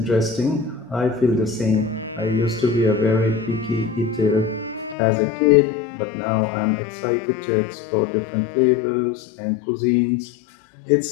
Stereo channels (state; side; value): drops out; right; at 5.0 s